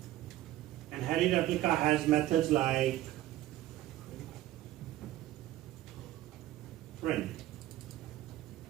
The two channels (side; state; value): left; quieter; 14.8 dB